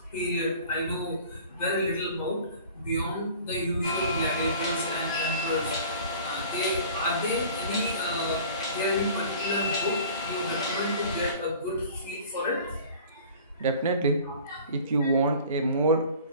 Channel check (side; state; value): both; inverted; correlation -0.45